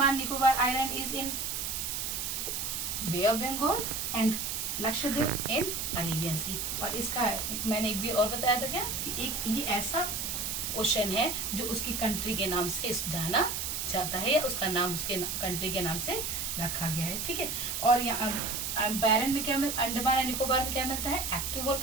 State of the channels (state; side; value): noise; right; hiss, 2 dB below the sound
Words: Nicobar Island is in Bay of Bengal and Lakshadweep in Arabian Sea। और इसका मैंने एक भी और बताया था क्या कि एक ये ऐसा ओशन है जो उसकी कंट्री के नाम से जाना जाता है या उसका नाम उसके कंट्री के नाम से रखा गया है। ठीक है, और यहाँ बैरन में क्या मिलता है, अंडमान एंड निकोबार में क्या मिलता है, एक्टिव